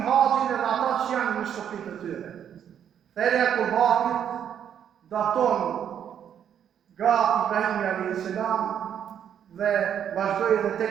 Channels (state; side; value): quieter; left; 9.1 dB